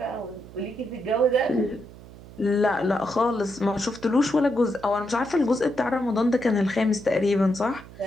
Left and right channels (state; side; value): noise; right; hum, 18 dB below the sound